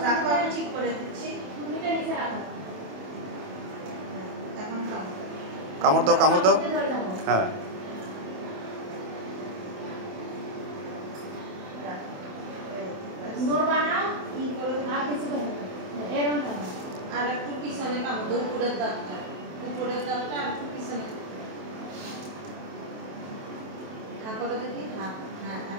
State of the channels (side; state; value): left; late; 27 ms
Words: আমি ঠিক করে দিচ্ছি। টুকরিটা নিচে রাখো। এখন কামড় দাও, কামড় দাও। হ্যাঁ, নড়বা না, কি করে আর কিছু করবে না, এরকম থাকো। আর একটু পিছনে কামড় দাও, উপরের দাঁতটা আর একটু পিছনে হ্যাঁ করে দেখি। হ্যাঁ হ্যাঁ,